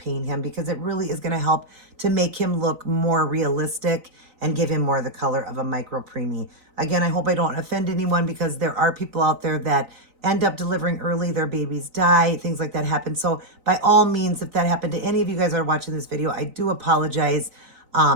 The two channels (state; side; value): late; left; 3.9 ms